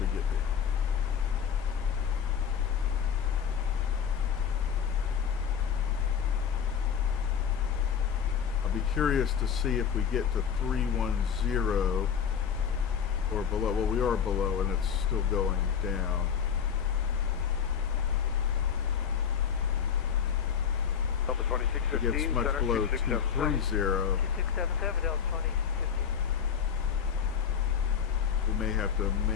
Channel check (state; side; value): quieter; right; 7.6 dB